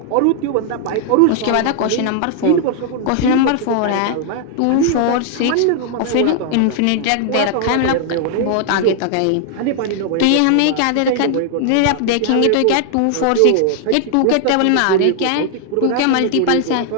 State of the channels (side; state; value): both; different; correlation 0.00